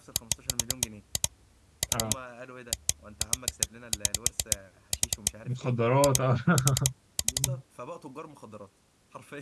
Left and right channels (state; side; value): identical; both; correlation 1.00